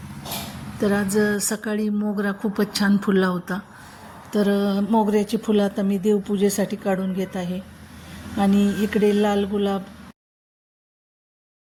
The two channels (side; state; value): both; identical; correlation 1.00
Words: तर आज सकाळी मोगरा खूपच छान फुलला होता. तर मोगऱ्याची फुलं आता मी देवपूजेसाठी काढून घेत आहे. आणि इकडे लाल गुलाब,